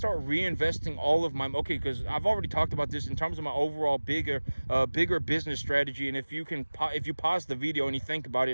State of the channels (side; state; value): both; inverted; correlation -1.00